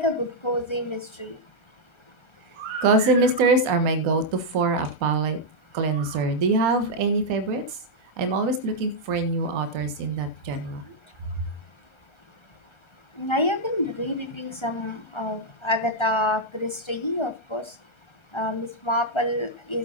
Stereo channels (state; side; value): late; right; 1.3 ms